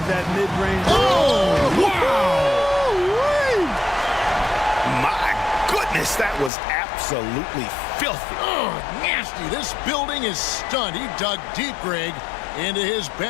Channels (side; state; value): right; drops out; at 6.5 s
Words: that mid-range. Oh, wow! My goodness, that was absolutely filthy. Oh, nasty. This building is stunned. He dug deep, Greg, into his